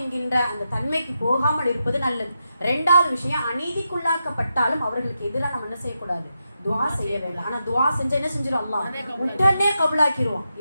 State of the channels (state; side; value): inverted; both; correlation -0.86